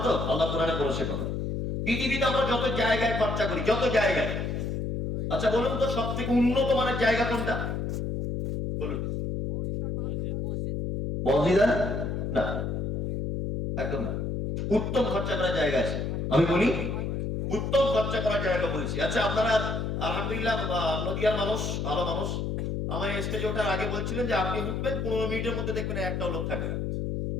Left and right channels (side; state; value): left; noise; hum, 2 dB below the sound